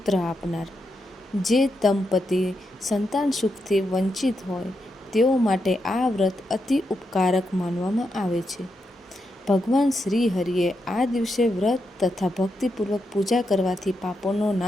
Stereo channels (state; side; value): normal; both; correlation 0.84